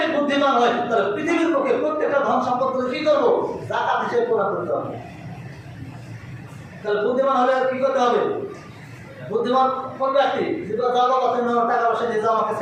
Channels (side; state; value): both; identical; correlation 1.00